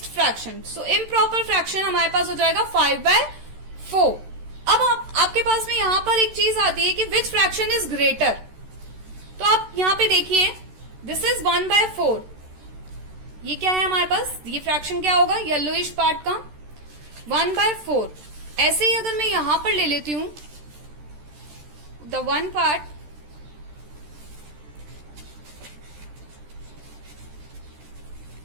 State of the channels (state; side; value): late; left; 13 ms